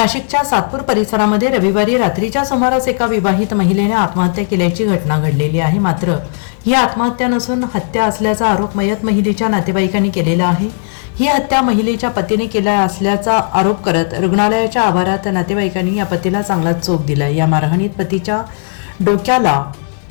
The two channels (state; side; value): silent; right; digital silence